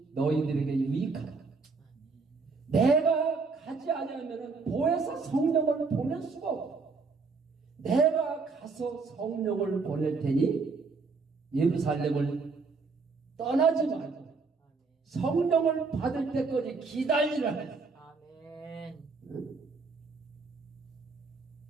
너희들에게 유익하다. 내가 가지 않으면 보혜사 성령을 보낼 수가 없다. 내가 가서 성령을 보낼 테니 예루살렘을 떠나지 말고 성령을 받을 때까지 기다리라 했어요. 아멘.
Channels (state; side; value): quieter; left; 4.4 dB